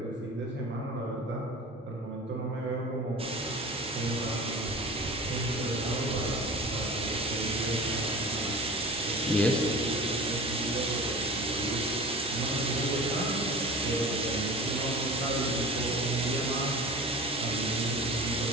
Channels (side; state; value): both; normal; correlation 0.38